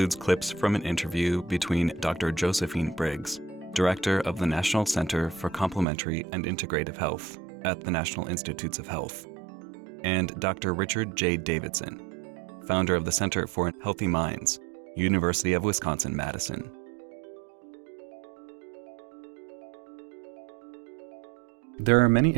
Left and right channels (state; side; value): drops out; left; at 5.9 s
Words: clips from an interview between Dr. Josephine Briggs, Director of the National Center for Complementary and Integrative Health at the National Institutes of Health, and Dr. Richard J. Davidson, founder of the Center for Healthy Minds, University of Wisconsin-Madison. There are many